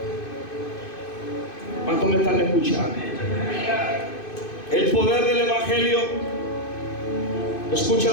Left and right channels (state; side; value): late; right; 2.5 ms